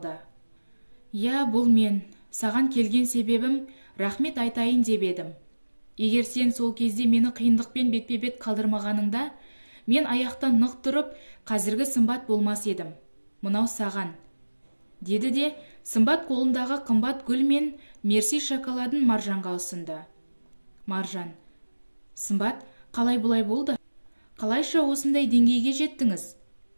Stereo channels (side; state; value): both; inverted; correlation -1.00